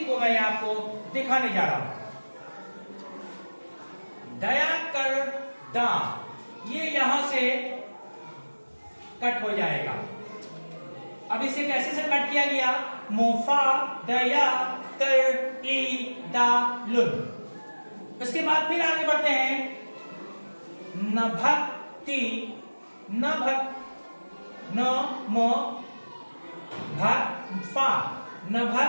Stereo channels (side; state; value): both; inverted; correlation -1.00